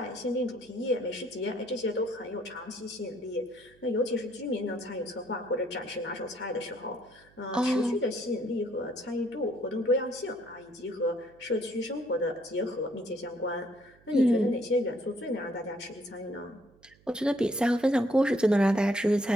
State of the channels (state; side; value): noise; right; hum, 29 dB below the sound